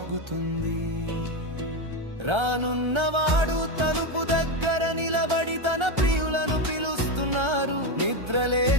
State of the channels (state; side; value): late; left; 1.3 ms